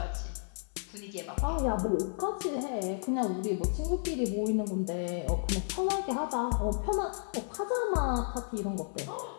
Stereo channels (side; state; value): right; silent; digital silence